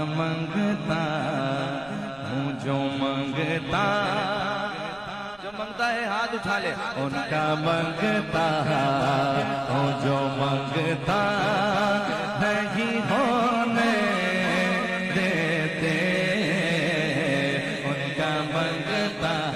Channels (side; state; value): right; noise; rumble, 27 dB below the sound